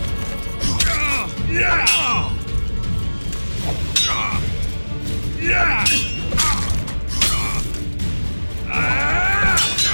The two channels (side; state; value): both; inverted; correlation -1.00